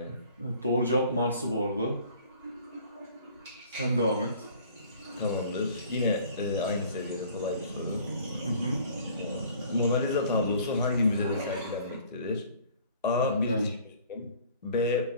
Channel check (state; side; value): inverted; both; correlation -0.52